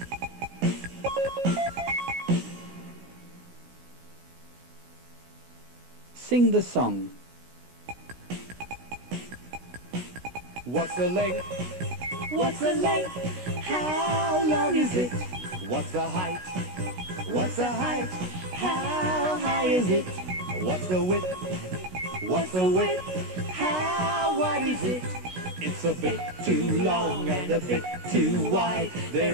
Sing the song. What's the length? What's the length? How long is it? What's the height? What's the height? How high is it? What's the width? What's the width? How wide is it? It's a bit too long and a bit too wide.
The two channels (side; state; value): left; late; 16 ms